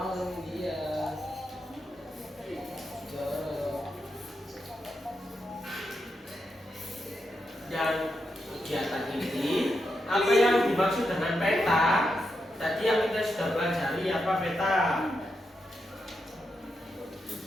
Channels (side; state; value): both; normal; correlation 0.85